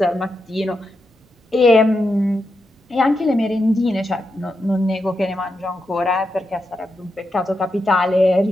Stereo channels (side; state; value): both; normal; correlation 0.86